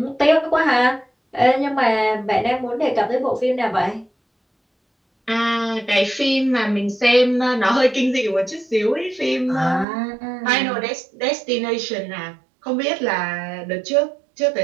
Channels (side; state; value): left; drops out; at 9.9 s